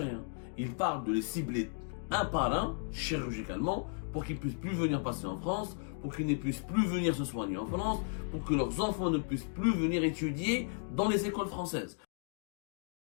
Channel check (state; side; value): silent; right; 55 dB below the other